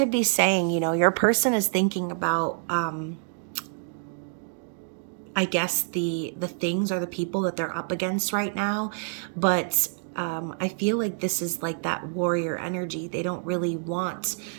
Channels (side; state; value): left; silent; digital silence